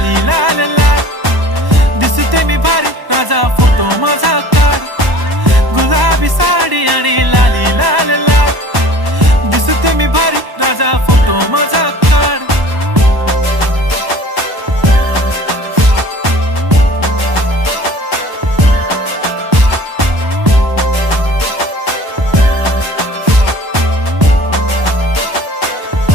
लाल लाल, दिसते मी भारी राजा फोटो माझा काढ. गुलाबी साडी आणि लाली लाल लाल, दिसते मी भारी राजा फोटो माझा काढ.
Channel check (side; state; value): left; late; 1.1 ms